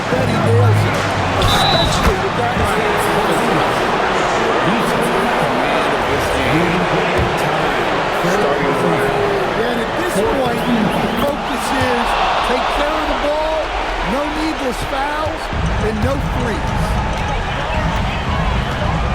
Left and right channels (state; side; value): identical; both; correlation 1.00